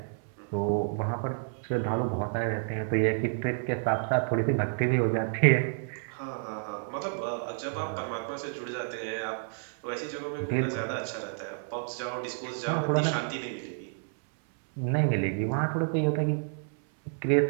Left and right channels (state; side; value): silent; left; 58 dB below the other